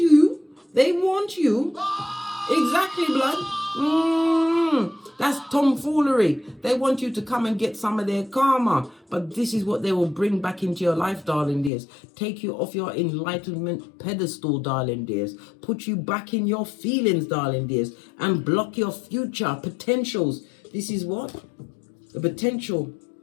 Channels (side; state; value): right; drops out; at 11.7 s